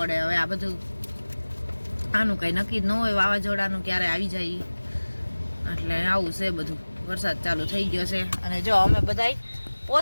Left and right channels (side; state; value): both; inverted; correlation -1.00